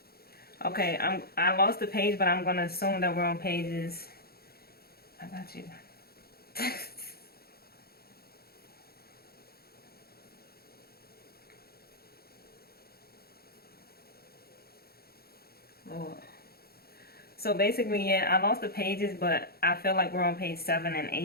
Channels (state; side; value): late; right; 0.45 ms